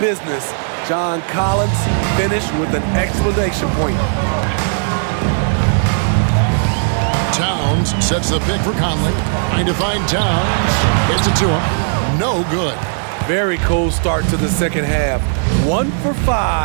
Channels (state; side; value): silent; left; 56 dB below the other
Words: John Collins, finished with an exclamation point. Towns sets the pick for Conley. Trying to find Towns. Gets it to him. No good. Very cold start to the second half. 1 for